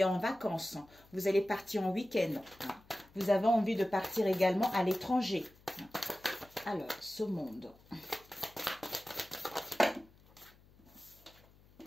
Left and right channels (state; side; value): noise; left; hum, 27 dB below the sound